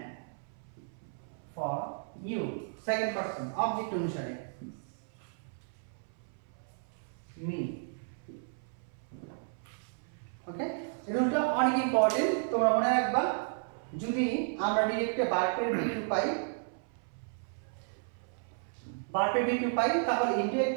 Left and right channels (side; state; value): left; silent; 56 dB below the other